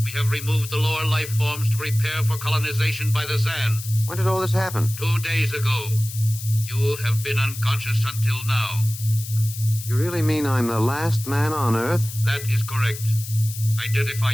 We have removed the lower life forms to prepare for colonization by the Zan. When did all this happen? 2 days ago. You have been unconscious until now. You really mean I'm the last man on Earth? That is correct. Identify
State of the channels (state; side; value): noise; left; hiss, 11 dB below the sound